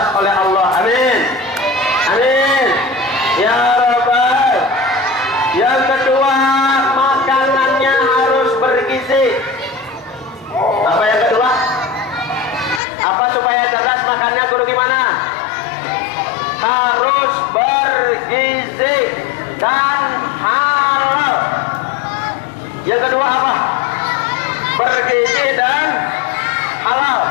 oleh Allah. Amin. Amin. Ya Rabbal. Yang kedua, makanannya harus bergizi. Apa yang kedua? Apa supaya cerdas makannya guru gimana? Harus bergizi dan halal. Yang kedua apa? Bergizi dan halal.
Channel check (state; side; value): drops out; right; at 12.8 s